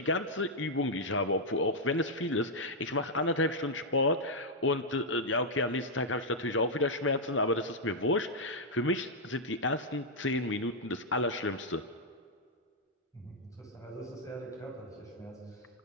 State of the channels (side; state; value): both; normal; correlation -0.04